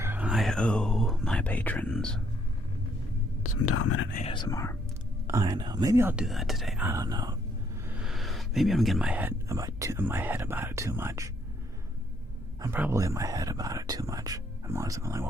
owe my patrons some dominant ASMR. I know. Maybe I'll do that today. I don't know. Maybe I'm getting in my head about it too much. I'm probably in my head about it too much. I'm always like,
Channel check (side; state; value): both; normal; correlation 0.70